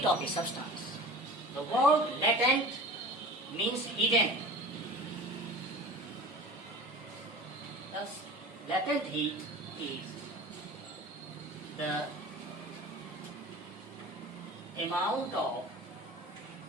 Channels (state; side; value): normal; both; correlation 0.37